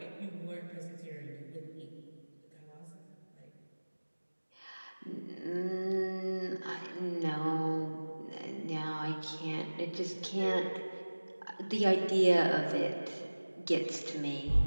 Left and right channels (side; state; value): both; inverted; correlation -1.00